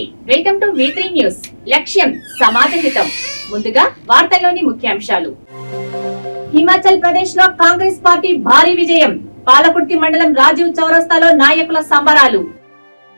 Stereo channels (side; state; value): both; inverted; correlation -1.00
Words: welcome to V3 news. లక్ష్యం సమాజ హితం. ముందుగా వార్తల్లోని ముఖ్యాంశాలు. హిమాచల్ ప్రదేశ్ లో కాంగ్రెస్ పార్టీ భారీ విజయం. పాలకుర్తి మండలం రాజీవ్ చౌరస్తాలో నాయకుల సంబరాలు.